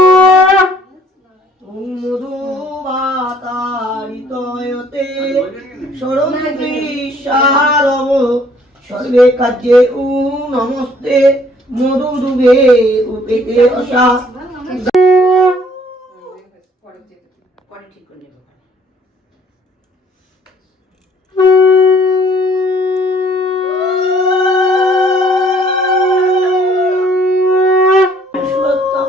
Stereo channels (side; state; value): both; normal; correlation 0.60